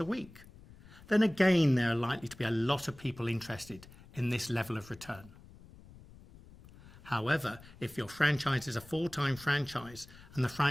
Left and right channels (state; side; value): noise; left; rumble, 21 dB below the sound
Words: week, then again there are likely to be a lot of people interested in this level of return. However, if your franchise is a full-time franchise and the